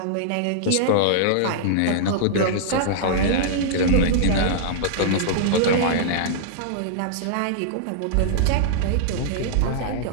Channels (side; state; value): both; different; correlation -0.02